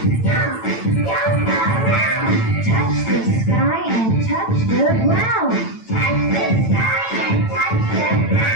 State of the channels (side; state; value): right; late; 8.9 ms